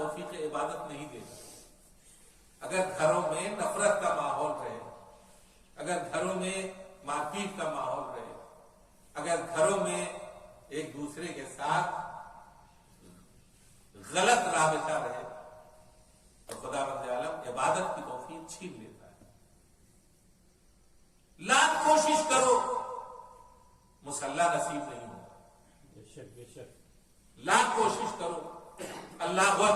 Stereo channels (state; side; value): identical; both; correlation 1.00